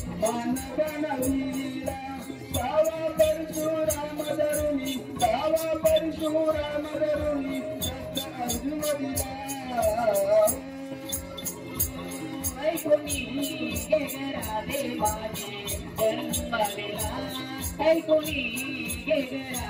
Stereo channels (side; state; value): both; identical; correlation 1.00